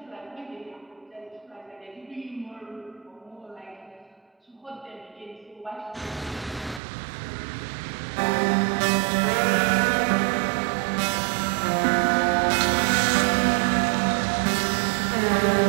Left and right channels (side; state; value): left; drops out; at 6.8 s